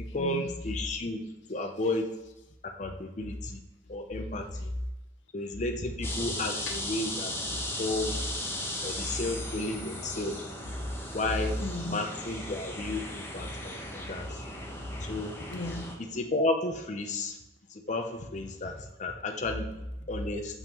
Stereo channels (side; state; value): both; normal; correlation 0.37